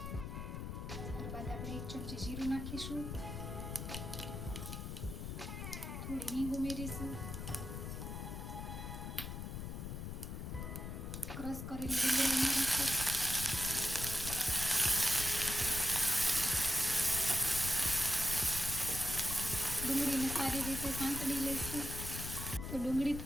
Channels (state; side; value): noise; left; rumble, 6 dB below the sound